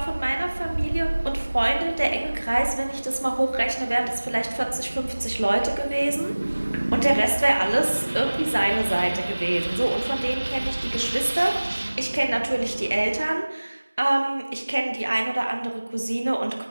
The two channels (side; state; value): both; inverted; correlation -1.00